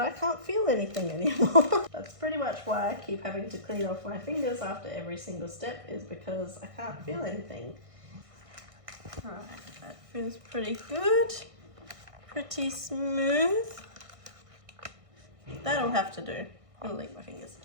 can't feel anything anymore. That's pretty much why I keep having to clean off my fingers after every single step, is because I can't feel anything. Alright, that feels pretty good. Pretty smooth. That'll have to do. I'm gonna lick my fingers.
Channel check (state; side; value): late; left; 1.6 ms